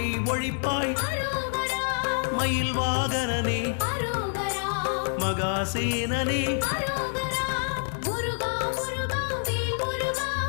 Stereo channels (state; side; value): silent; right; 55 dB below the other